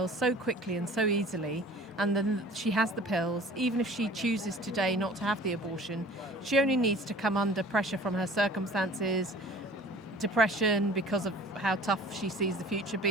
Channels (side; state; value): both; normal; correlation 0.46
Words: so quickly and so easily, and then she has the pills. Even if she chooses today not to have the abortion, she only needs to come under pressure from her circumstances, depression because of how tough she sees the future